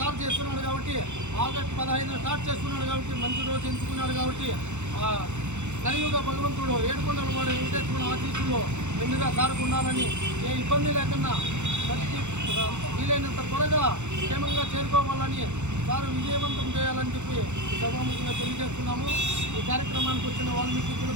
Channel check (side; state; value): left; late; 0.83 ms